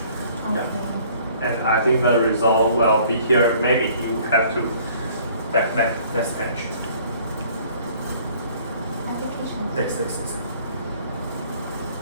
Okay. And I think the result will be here. Maybe you have to back next page. Application. Next.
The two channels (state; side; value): inverted; both; correlation -0.56